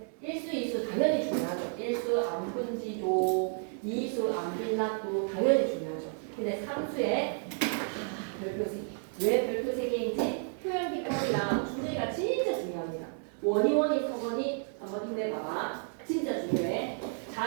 1수, 2수 당연히 중요하죠. 1수 안분지족, 2수 안빈납도 당연히 중요하죠. 근데 3수에 별표 3개. 왜 별표 3개인지 표현 기법이랑 주제가 진짜 중요합니다. 원이 서건이 한번 힘내봐봐. 진짜 중요해.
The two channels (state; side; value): silent; left; 55 dB below the other